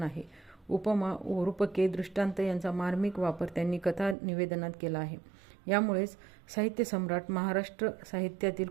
आहे. उपमा, रूपके, दृष्टांत यांचा मार्मिक वापर त्यांनी कथा निवेदनात केला आहे. यामुळेच साहित्य सम्राट, महाराष्ट्र साहित्यातील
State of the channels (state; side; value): drops out; left; at 4.2 s